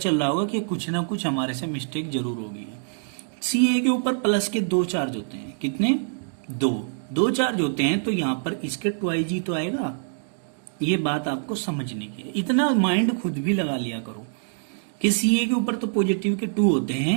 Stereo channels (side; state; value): left; silent; digital silence